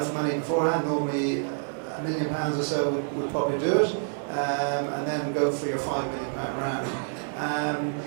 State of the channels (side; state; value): left; silent; digital silence